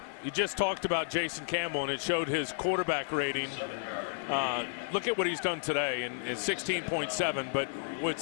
You just talked about Jason Campbell, and it showed his quarterback rating. Look at what he's done today, and is 16.7. But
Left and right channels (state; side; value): silent; right; digital silence